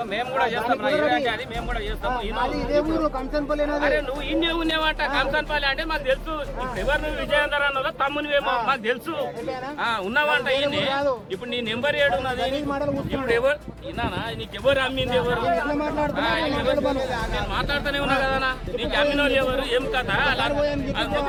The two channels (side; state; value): both; identical; correlation 1.00